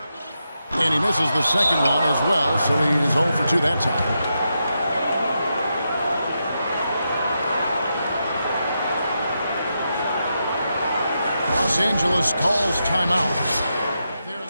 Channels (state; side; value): inverted; both; correlation -0.85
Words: And he misses the second one as well, so he is 0 for 2 that time. Los Angeles calls timeout. They're